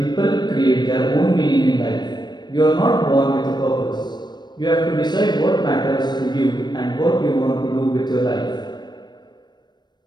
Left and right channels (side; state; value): right; late; 0.21 ms